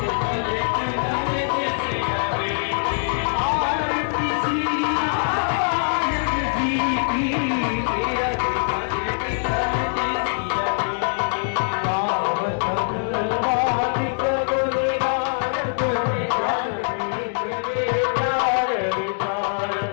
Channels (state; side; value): silent; right; 61 dB below the other